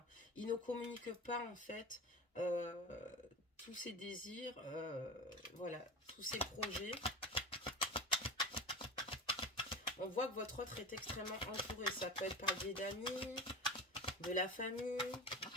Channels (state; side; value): normal; both; correlation 0.29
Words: Il ne communique pas en fait tous ses désirs, voilà, tous ses projets. On voit que votre autre est extrêmement entouré. Ça peut être par le biais d'amis, de la famille.